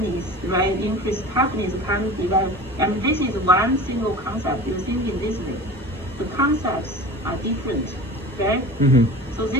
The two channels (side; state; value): both; normal; correlation 0.36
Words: right? Increased toughness can develop. And this is one single concept. You think in this way. The concepts are different, right? Mm-hmm. So